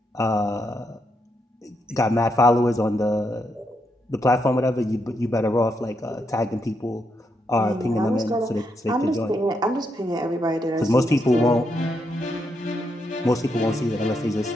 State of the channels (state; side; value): normal; both; correlation 0.80